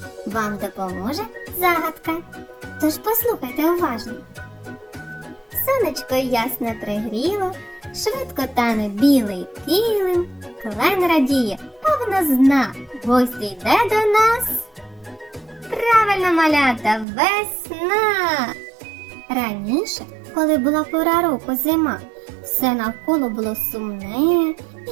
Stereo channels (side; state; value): left; drops out; at 17.1 s